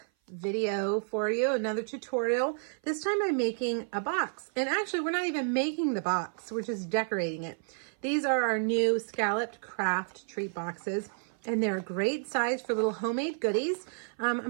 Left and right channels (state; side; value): silent; left; 55 dB below the other